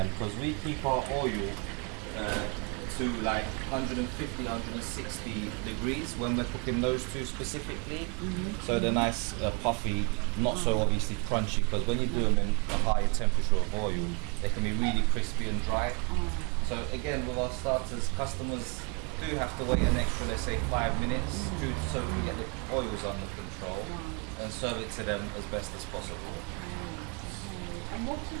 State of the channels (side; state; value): left; quieter; 34.2 dB